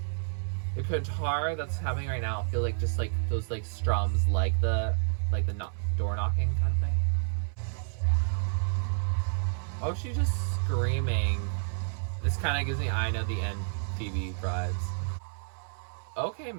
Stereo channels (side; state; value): left; silent; 58 dB below the other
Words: The guitar that's happening right now, I feel like just like those like strums, like the door knocking kind of thing. Oh, she's just screaming. This kind of gives me I Know the End Phoebe vibes. Okay,